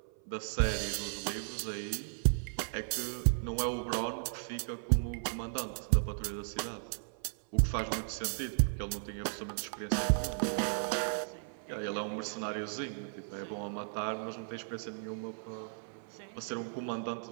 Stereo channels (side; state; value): left; silent; 54 dB below the other